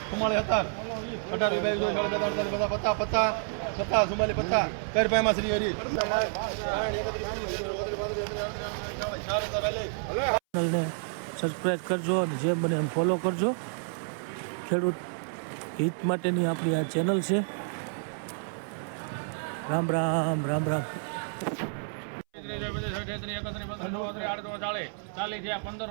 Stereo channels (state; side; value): silent; left; 58 dB below the other